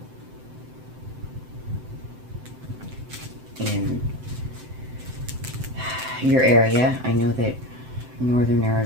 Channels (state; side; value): late; left; 7.8 ms